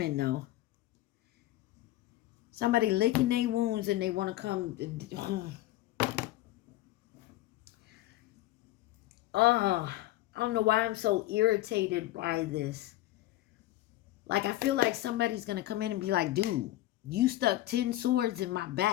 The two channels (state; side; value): quieter; right; 15.9 dB